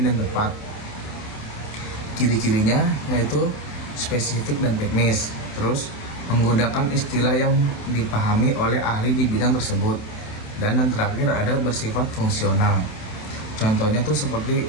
dan tepat. Ciri-cirinya yaitu spesifik dan teknis. Terus menggunakan istilah yang dipahami oleh ahli di bidang tersebut. Dan yang terakhir ada bersifat fungsional. Contohnya tuh seperti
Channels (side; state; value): right; late; 27 ms